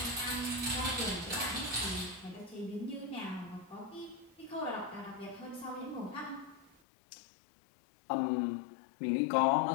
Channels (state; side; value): drops out; right; at 6.7 s